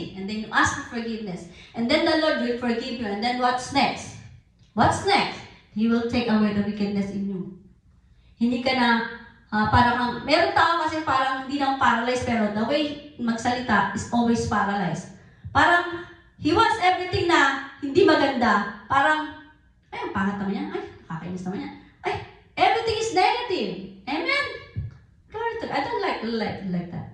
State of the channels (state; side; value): identical; both; correlation 1.00